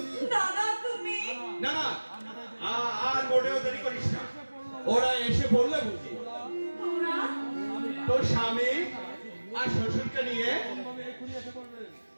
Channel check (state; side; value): inverted; both; correlation -1.00